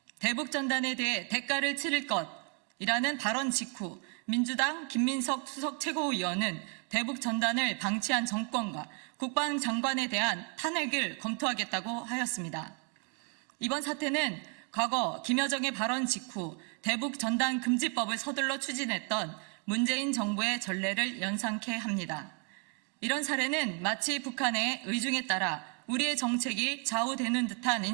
대북전단에 대해 대가를 치를 것이라는 발언 직후 민주당 김민석 수석 최고위원은 대북전단을 방치한 정권과 국방장관에 대한 탄핵을 검토하겠다고 하였습니다. 이번 사태는 과거 김여정의 발언 직후 대북전단 금지법을 서둘러 추진했던 문재인 정부의 전례를 연상케 합니다. 이런 사례는 마치 북한의 의중에 따라 우리의 정책이 좌우되는 듯한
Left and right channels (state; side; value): quieter; left; 38.5 dB